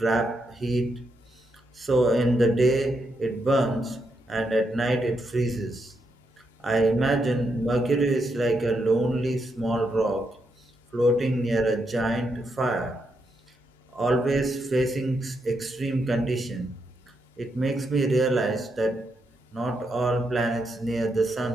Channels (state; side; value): normal; both; correlation 0.81